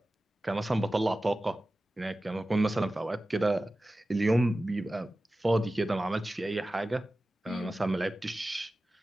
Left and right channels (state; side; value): normal; both; correlation 0.95